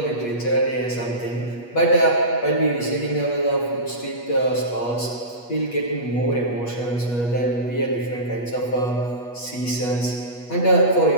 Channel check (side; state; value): right; late; 8.3 ms